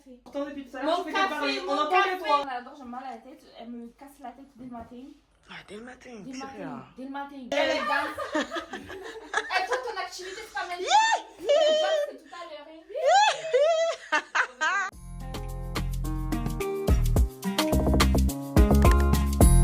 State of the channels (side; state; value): both; identical; correlation 1.00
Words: Pourtant, depuis tout à l'heure, Mon tu fais que parler. café, On mon entend que café. toi. J'adore, j'ai mal à la tête. Elle me casse la tête dès le matin. Ah, dès le matin. Dès le c'est matin. bien. Dès le matin. Elle est danse. Et toi, ton activité, c'est pas mal. C'est tout à l'heure.